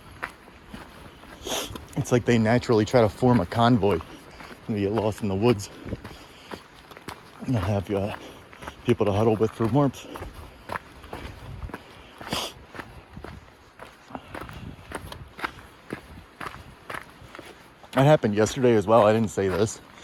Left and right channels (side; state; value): both; identical; correlation 1.00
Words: It's like they naturally try to form a convoy and you get lost in the woods. And they'll have people to huddle with for warmth. That happened yesterday as well. I didn't say this.